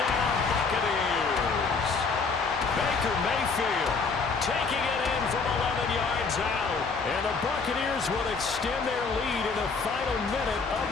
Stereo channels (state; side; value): quieter; right; 4.7 dB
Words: Buccaneers. Baker Mayfield taking it in from 11 yards out. And the Buccaneers will extend their lead in the final minute of